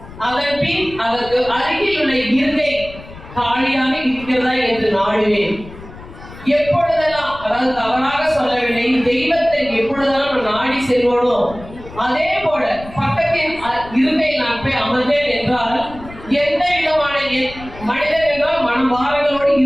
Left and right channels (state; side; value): noise; left; rumble, 17 dB below the sound